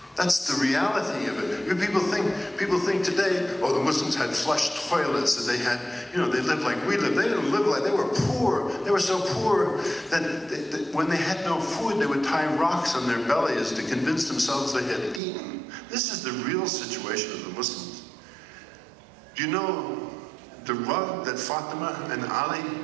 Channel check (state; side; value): drops out; left; at 15.2 s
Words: That's the reality of it. People think today, oh, the Muslims had flush toilets, and they had, they lived like we lived. They didn't live like, they were poor. They were so poor that when they had no food, they would tie rocks on their bellies to convince themselves they had eaten. This is the real situation of the Muslims. Do you know the rug that Fatima and Ali